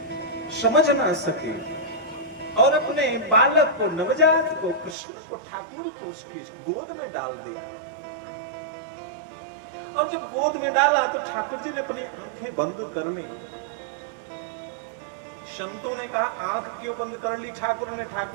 समझ ना सकी और अपने बालक को, नवजात को, कृष्ण को, ठाकुर को उसकी गोद में डाल दिया। और जब गोद में डाला तो ठाकुर जी ने अपनी आंखें बंद कर ली। संतों ने कहा आंख क्यों बंद कर ली ठाकुर ने?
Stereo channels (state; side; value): drops out; left; at 5.0 s